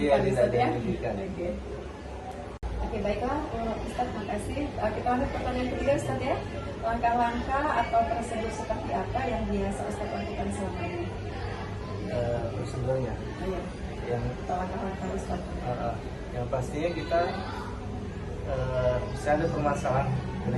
Iya, tidak Ustaz ada ya. yang dirugikan. Oke, baiklah Ustaz, makasih. Kita lanjut pertanyaan ketiga Ustaz ya. Langkah-langkah atau prosedur seperti apa yang biasa Ustaz lakukan selama ini? Prosedurnya Iya. yang Langkah-langkah Ustaz. yang pastinya kita bisa ada permasalahan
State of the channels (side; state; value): both; identical; correlation 1.00